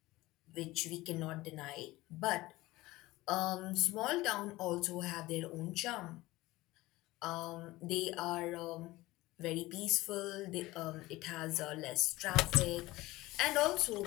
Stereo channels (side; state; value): right; quieter; 19.0 dB